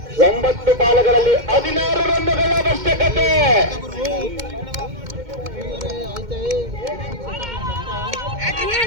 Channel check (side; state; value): left; late; 2.1 ms